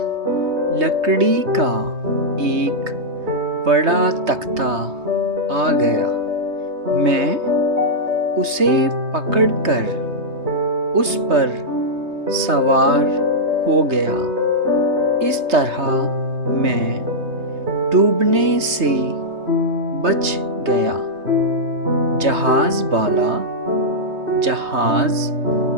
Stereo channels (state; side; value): late; left; 3.2 ms